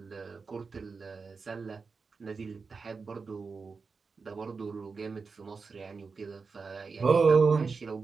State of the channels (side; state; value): left; quieter; 4.8 dB